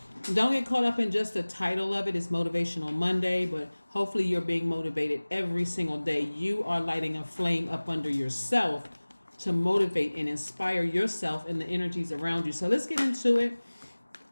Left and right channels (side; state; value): both; inverted; correlation -1.00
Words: Don't get caught up in just the title of it. It's Motivational Monday, but hopefully you're being motivated every single day. You are lighting a flame up under yourself to motivate and inspire yourself and the energies around you. So let's get into it.